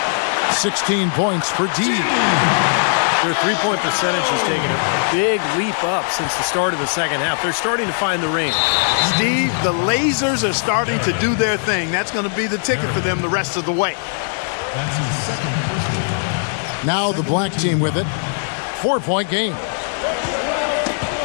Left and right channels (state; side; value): silent; right; 59 dB below the other